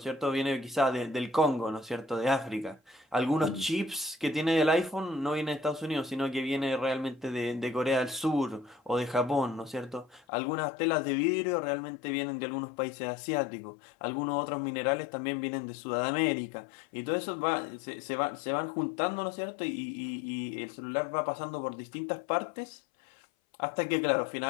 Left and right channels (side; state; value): right; drops out; at 10.2 s